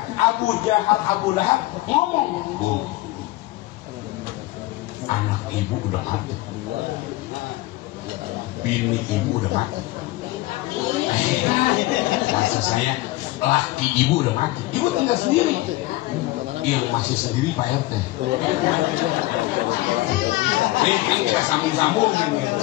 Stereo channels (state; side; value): quieter; right; 18.6 dB